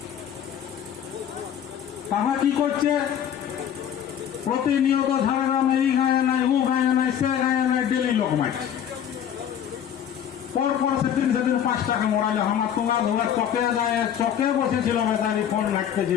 তারা কি করছে, প্রতিনিয়ত ঝাড়গ্রামে এই মারছে। পরপর সেদিন 5 টাকা মরাইল। আমার তোমার ধরে চকে যায়, চকে বসেছিল বেচারি, ফোন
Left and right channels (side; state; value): right; quieter; 9.4 dB